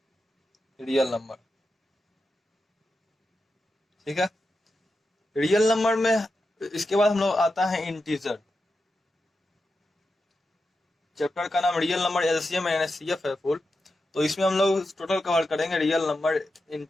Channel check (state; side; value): normal; both; correlation 0.89